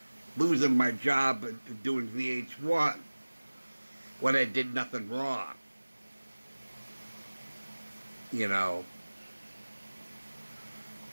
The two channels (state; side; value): inverted; both; correlation -1.00